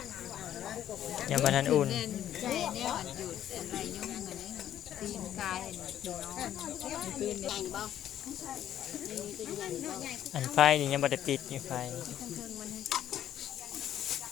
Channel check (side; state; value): right; quieter; 11.2 dB